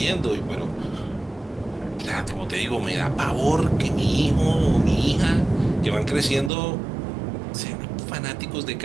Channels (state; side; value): drops out; left; at 6.5 s